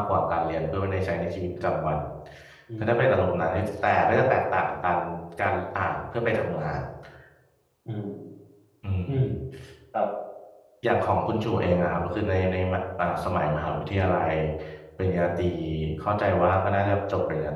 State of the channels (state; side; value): identical; both; correlation 1.00